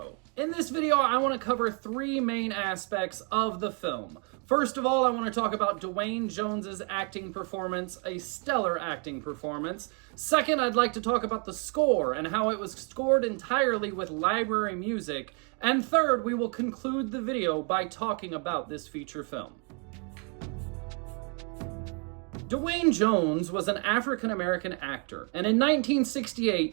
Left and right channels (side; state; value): left; quieter; 36.3 dB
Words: In this video, I want to cover 3 main aspects of the film. First of all, I want to talk about Duane Jones's acting performance, a stellar acting performance. Second, I'd like to talk about the score and how it was scored entirely with library music. And third, we will conclude the video by talking about this feature film. Duane Jones was an African-American actor, and in